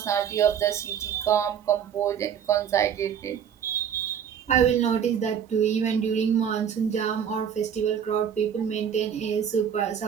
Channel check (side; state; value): left; quieter; 8.3 dB